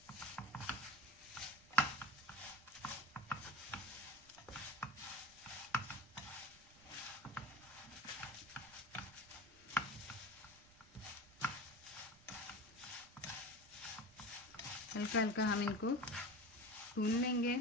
हल्का हल्का हम इनको भून लेंगे।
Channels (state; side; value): noise; right; rumble, 24 dB below the sound